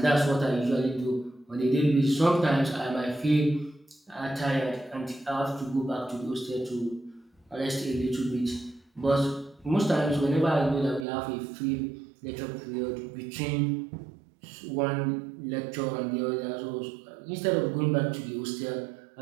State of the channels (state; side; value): drops out; left; at 11.1 s